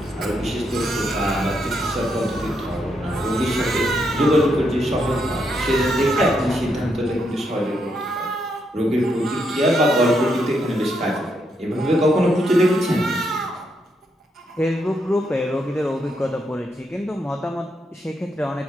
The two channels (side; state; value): both; normal; correlation 0.79